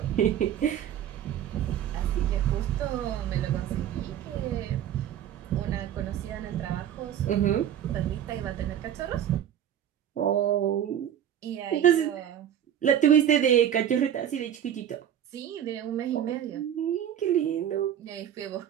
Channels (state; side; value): quieter; left; 10.2 dB